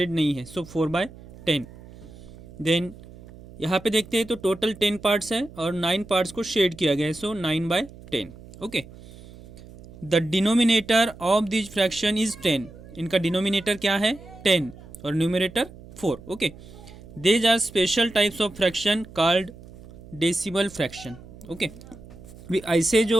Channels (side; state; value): right; noise; hum, 19 dB below the sound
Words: नहीं है, सो 4/10. देन यहाँ पे देखते हैं तो टोटल 10 पार्ट्स है और 9 पार्ट्स को शेड किया गया है, so 9/10. Okay, the denominator of this fraction is 10. इनका डिनोमिनेटर क्या है 10 और numerator 4. Okay, these are special types of fraction called decimal fraction. Okay, ऐसे